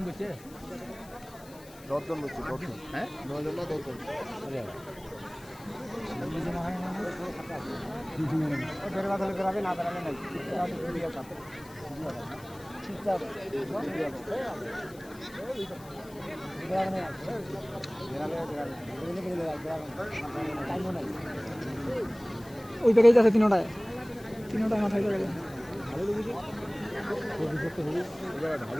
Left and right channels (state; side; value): noise; left; hiss, 22 dB below the sound